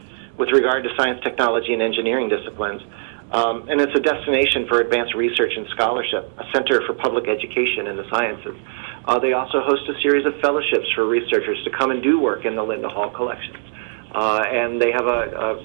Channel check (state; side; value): silent; left; 61 dB below the other